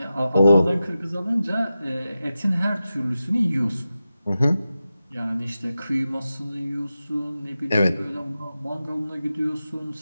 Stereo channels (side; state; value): both; inverted; correlation -0.92